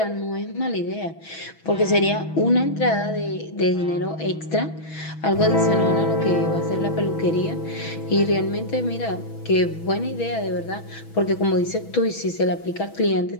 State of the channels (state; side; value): late; right; 6.2 ms